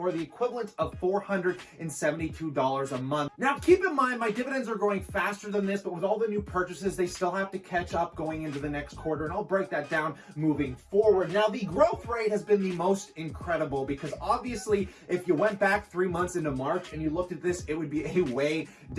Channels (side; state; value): both; identical; correlation 1.00